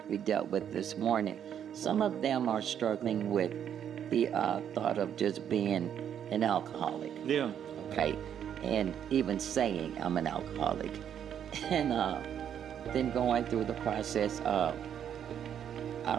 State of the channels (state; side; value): quieter; left; 9.1 dB